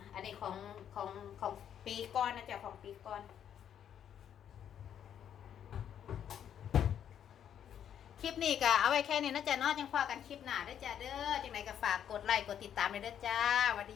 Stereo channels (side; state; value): right; quieter; 9.3 dB